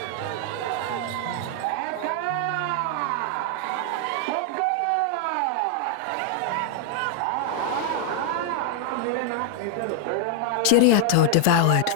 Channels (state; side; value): different; both; correlation 0.00